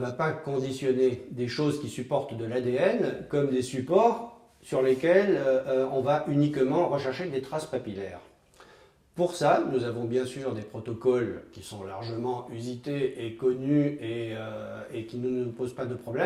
pas conditionner des choses qui supportent de l'ADN comme des supports sur lesquels on va uniquement rechercher des traces papillaires. Pour ça, nous avons bien sûr des protocoles qui sont largement usités et connus et qui ne nous posent pas de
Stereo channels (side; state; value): both; identical; correlation 1.00